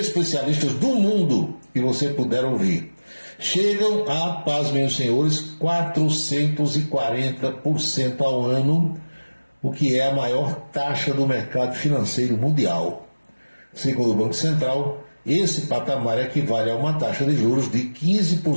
do mundo que você puder ouvir. Chegam a, pasmem os senhores, 440% ao ano, o que é a maior taxa do mercado financeiro mundial. Segundo o Banco Central, esse patamar equivale a uma taxa de juros de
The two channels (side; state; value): both; inverted; correlation -1.00